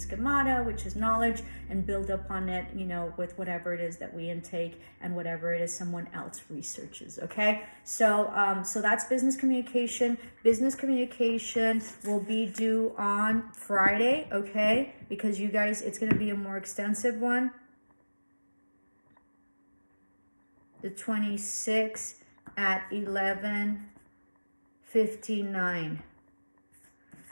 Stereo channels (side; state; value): both; inverted; correlation -1.00